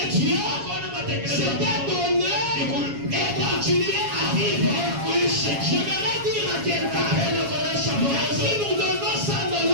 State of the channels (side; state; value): left; late; 7.3 ms